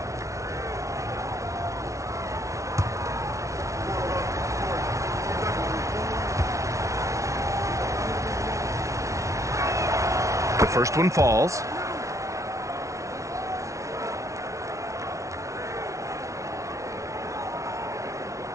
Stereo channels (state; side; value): late; left; 0.15 ms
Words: The first one falls.